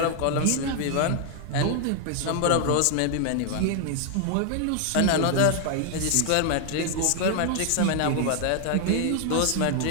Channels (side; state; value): both; different; correlation 0.00